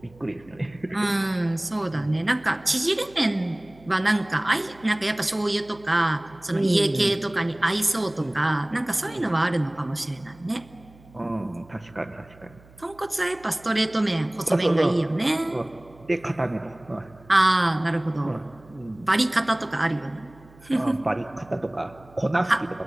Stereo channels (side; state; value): right; noise; hum, 25 dB below the sound